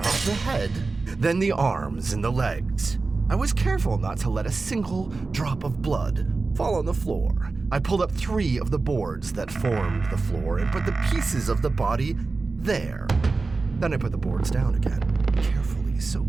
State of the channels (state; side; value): quieter; left; 3.9 dB